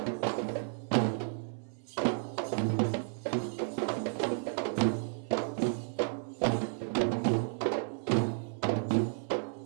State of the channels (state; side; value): silent; left; 56 dB below the other